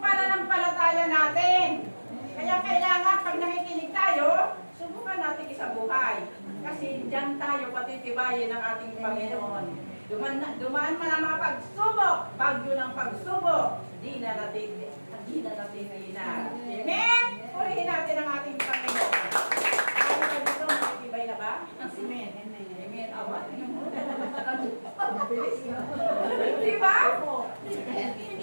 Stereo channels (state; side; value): inverted; both; correlation -1.00